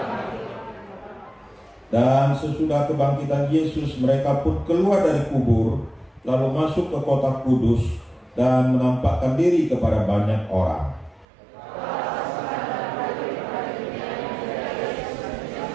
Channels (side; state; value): left; drops out; at 11.2 s